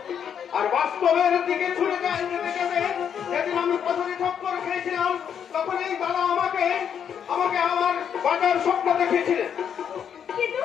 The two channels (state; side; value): quieter; right; 8.2 dB